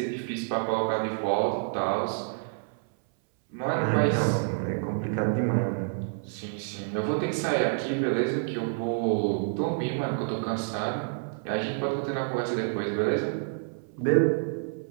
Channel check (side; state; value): left; silent; 59 dB below the other